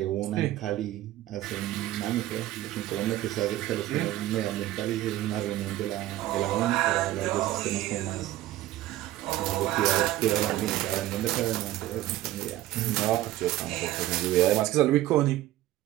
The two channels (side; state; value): left; quieter; 14.9 dB